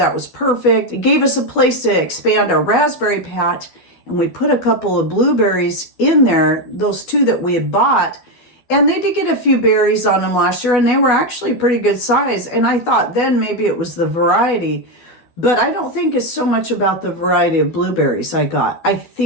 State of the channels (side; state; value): right; late; 12 ms